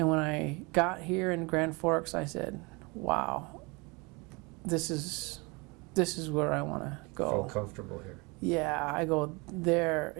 when I got here in Grand Forks, I said, wow, this is where I want to go. Feel comfortable here. Yeah, I go there.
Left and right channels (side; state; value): left; quieter; 27.5 dB